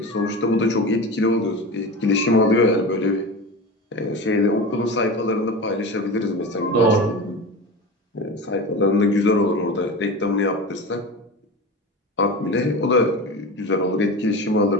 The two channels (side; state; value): both; normal; correlation 0.28